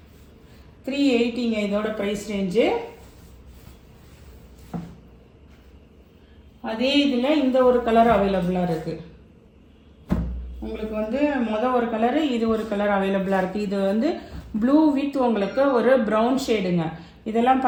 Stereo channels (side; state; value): both; identical; correlation 1.00